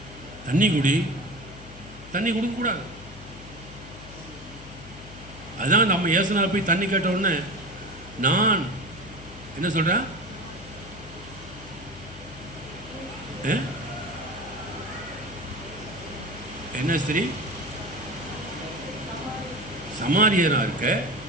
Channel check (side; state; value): left; noise; hum, 16 dB below the sound